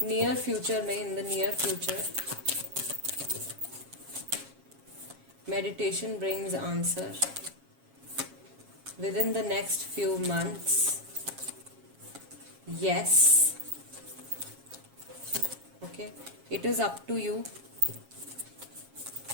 नियर फ्यूचर में, in the near future, meditation brings answer within the next few months, yes, okay, it is up to you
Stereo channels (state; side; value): late; left; 7.3 ms